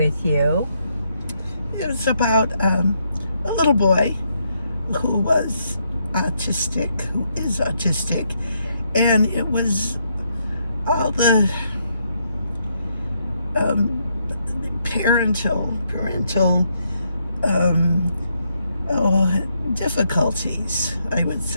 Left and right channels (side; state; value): both; inverted; correlation -0.76